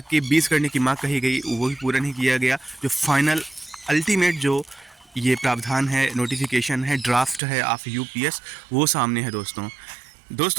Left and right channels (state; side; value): drops out; left; at 7.4 s